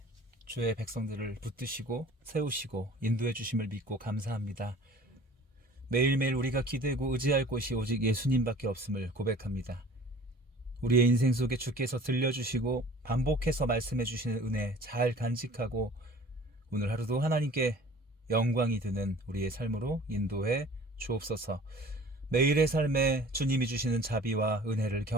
주의 백성들을 붙드시고 세우시고 인도해 주심을 믿고 감사합니다. 매일매일 우리가 기대고 의지할 곳이 오직 예수님밖에 없음을 고백합니다. 우리의 인생 속에 주께서 들려주시고 반복해서 말씀해 주시는 은혜 잘 간직하고 오늘 하루도 하나님께 영광이 드는 우리의 삶으로 인도해 주옵소서. 매일의 삶에 주님이 주시는 자비와 은혜를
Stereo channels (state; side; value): normal; both; correlation 0.47